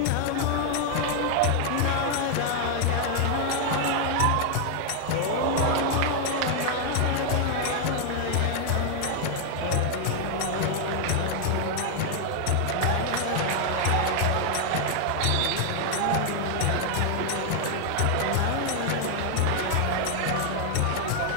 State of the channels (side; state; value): both; different; correlation 0.00